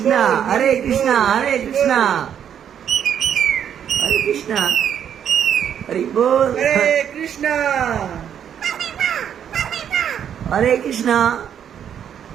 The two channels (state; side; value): quieter; left; 9.0 dB